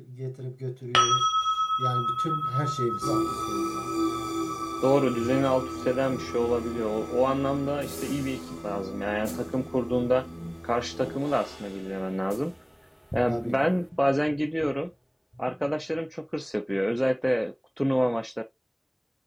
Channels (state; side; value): identical; both; correlation 1.00